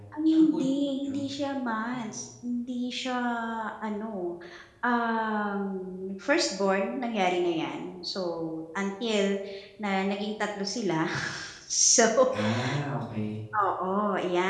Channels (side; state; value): both; identical; correlation 1.00